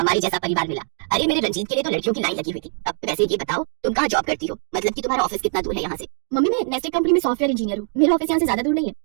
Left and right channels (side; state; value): left; silent; 58 dB below the other